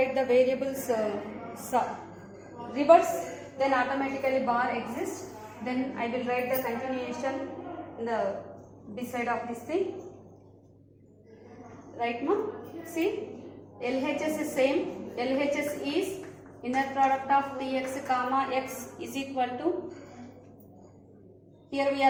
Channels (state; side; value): identical; both; correlation 1.00